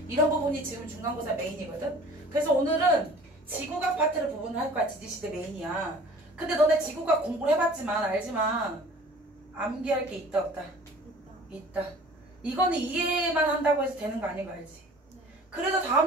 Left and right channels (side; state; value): both; normal; correlation 0.47